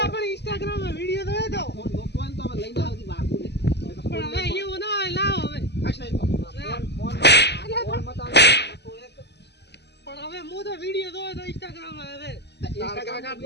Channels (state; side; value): late; right; 0.50 ms